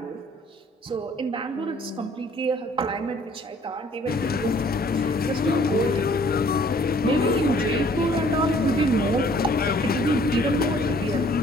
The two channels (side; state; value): both; normal; correlation 0.58